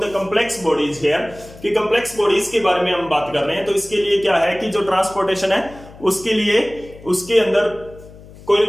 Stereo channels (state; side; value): noise; left; hum, 20 dB below the sound